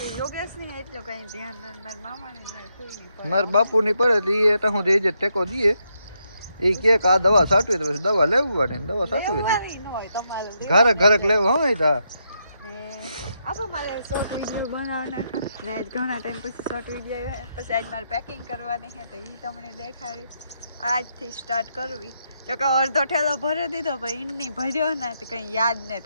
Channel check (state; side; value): inverted; both; correlation -0.80